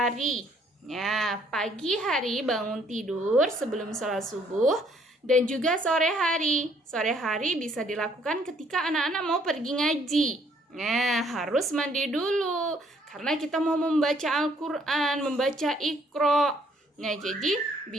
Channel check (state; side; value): normal; both; correlation 0.65